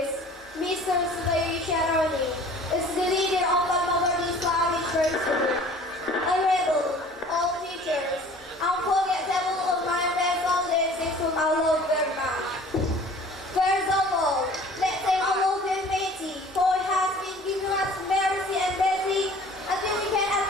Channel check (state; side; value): normal; both; correlation 0.48